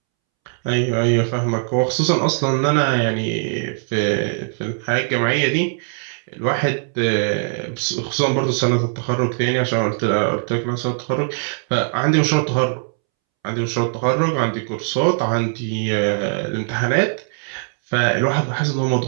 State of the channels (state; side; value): silent; left; 65 dB below the other